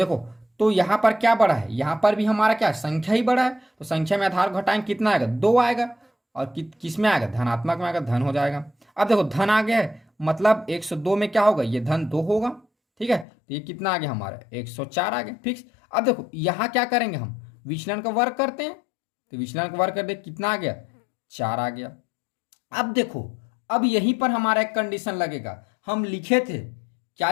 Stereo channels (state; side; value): drops out; right; at 13.2 s